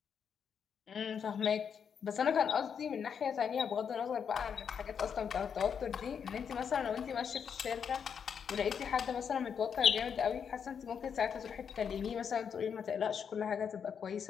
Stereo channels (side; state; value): right; quieter; 7.2 dB